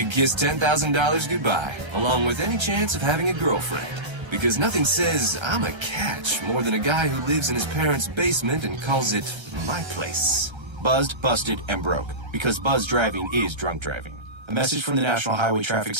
kiss $10,000 goodbye, along with any chance of having a girlfriend. Because nothing says, "I'm a catch," more than a guy who lives in his parents' basement and calls it my place. Buzzed, busted, and broke. Because buzz driving is drunk driving. A message from the National Highway Traffic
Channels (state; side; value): late; left; 1.3 ms